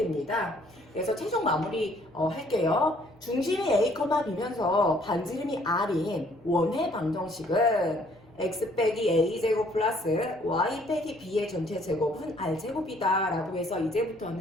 그래서 최종 마무리 할게요. 중심이 a, b면서 반지름이 r인 원의 방정식은 x 빼기 a 제곱 플러스 y 빼기 b의 전체 제곱은 r 제곱이다 라고 해서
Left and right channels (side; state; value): both; normal; correlation 0.62